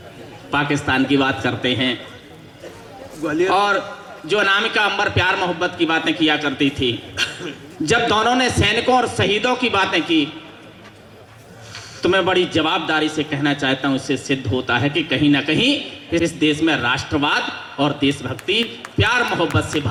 पाकिस्तान की बात करते हैं, और जो अनामिका अंबर प्यार मोहब्बत की बातें किया करती थी, जब दोनों ने सैनिकों और शहीदों की बातें की तो मैं बड़ी जवाबदारी से कहना चाहता हूं, इससे सिद्ध होता है कि कहीं ना कहीं इस देश में राष्ट्रवाद और देशभक्ति प्यार मोहब्बत से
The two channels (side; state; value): both; identical; correlation 1.00